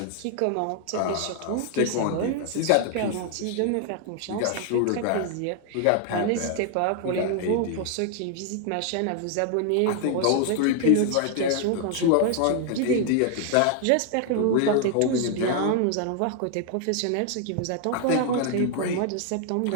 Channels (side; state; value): both; different; correlation 0.00